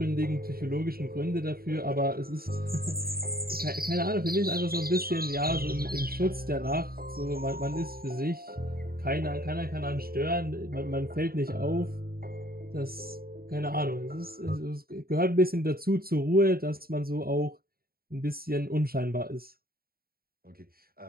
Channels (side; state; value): left; late; 0.43 ms